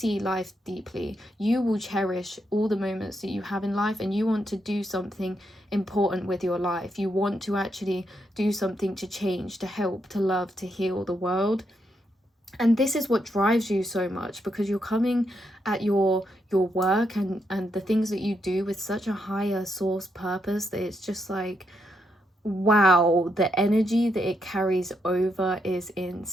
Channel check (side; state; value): both; normal; correlation 0.80